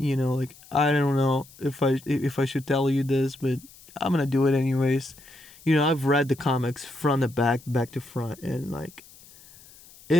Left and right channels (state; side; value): noise; left; hiss, 23 dB below the sound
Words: I don't know if I should tell you this, but I'm gonna do it anyways. I've read the comics front to back to front, and like,